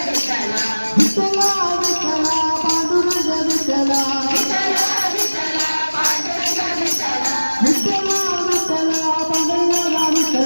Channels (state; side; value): inverted; both; correlation -1.00